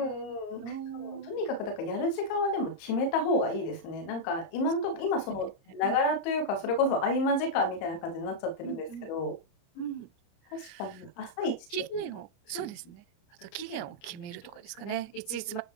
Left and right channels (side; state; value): right; late; 29 ms